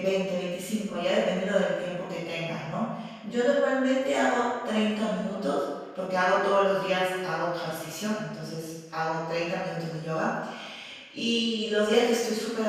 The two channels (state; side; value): identical; both; correlation 1.00